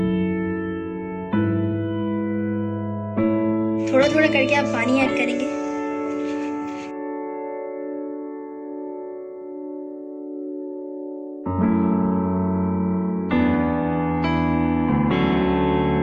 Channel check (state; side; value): identical; both; correlation 1.00